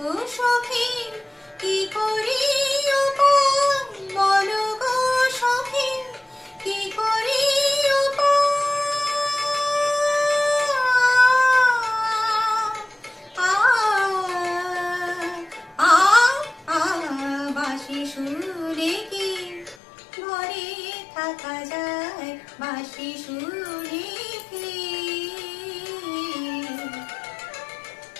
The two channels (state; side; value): drops out; right; at 19.8 s